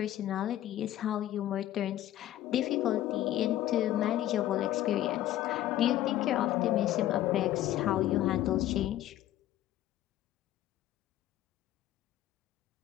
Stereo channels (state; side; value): quieter; right; 13.4 dB